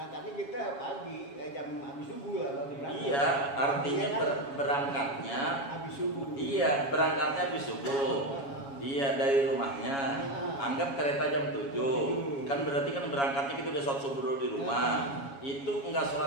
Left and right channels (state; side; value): late; right; 7.2 ms